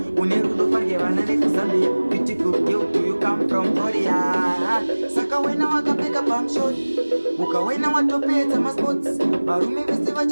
unerudo farge vana vekuzambia beautiful girl do you come from Korea saka wena wakapfeka pamshot ukawena watopedza masports varume vese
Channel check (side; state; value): both; inverted; correlation -1.00